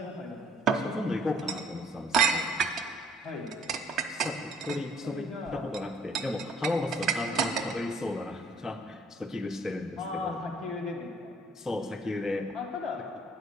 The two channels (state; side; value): normal; both; correlation 0.60